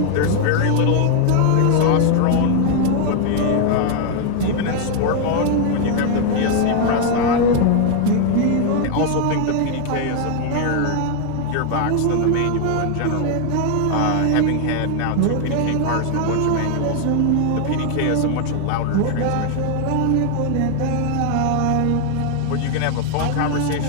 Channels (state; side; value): different; both; correlation 0.00